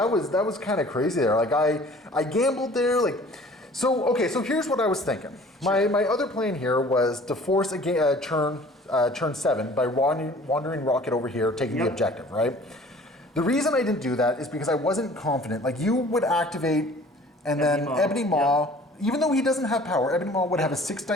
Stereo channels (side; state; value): both; normal; correlation 0.49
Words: was kind of crazy there. Like I gambled there, like. So here's what I was thinking. My other plan here was to force a turn 7 by wandering Rocket over here, taking the objective, right? The reason I didn't do that is because I wasn't confident. Like, you would activate, and then Ebony Maw, even though he doesn't have power, Ebony Maw would have a 6